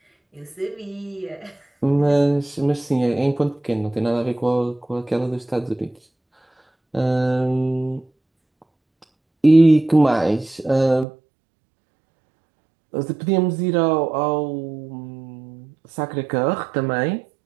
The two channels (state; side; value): drops out; left; at 11.1 s